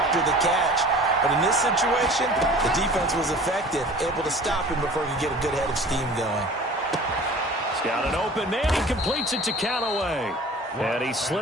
the catch. But in this situation, the defense was effective, able to stop him before he could get a good head of steam going. He's got an open man. He completes it to Callaway. And he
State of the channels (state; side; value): normal; both; correlation 0.44